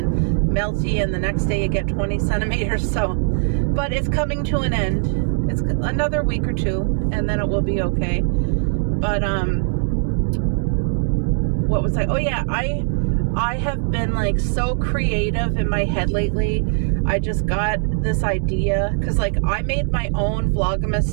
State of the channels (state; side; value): silent; left; digital silence